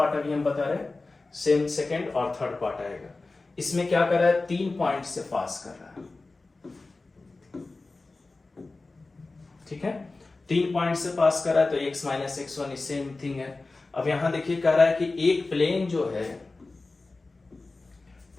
अभी हम बता रहे हैं, सेकंड और थर्ड पार्ट आएगा। इसमें क्या कर रहा है, 3 पॉइंट से पास कर रहा है, ठीक है, 3 पॉइंट से पास कर रहा है। तो x - x1 सेम थिंग है। अब यहां देखिए कह रहा है कि एक प्लेन जो है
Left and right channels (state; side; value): quieter; right; 3.4 dB